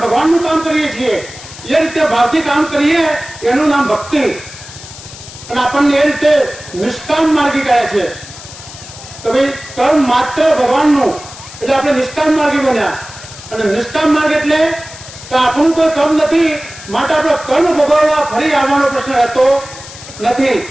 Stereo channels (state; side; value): noise; left; hiss, 16 dB below the sound